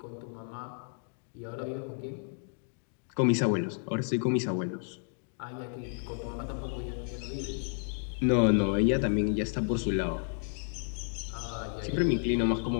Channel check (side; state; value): right; silent; 57 dB below the other